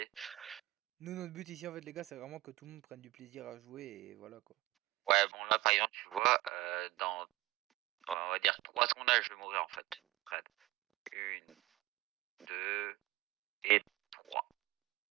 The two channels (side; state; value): left; quieter; 18.7 dB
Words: Nous, notre but ici, en fait, les gars, c'est vraiment que tout le monde prenne du plaisir à jouer et voilà quoi. Ouais, bon là par exemple, tu vois, dans, on va dire 3 secondes là, je vais mourir en fait. Près. Une, deux et trois.